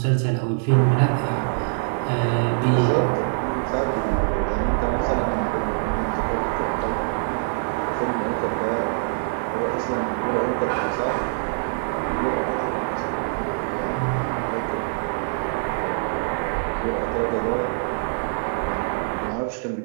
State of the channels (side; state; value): left; silent; 62 dB below the other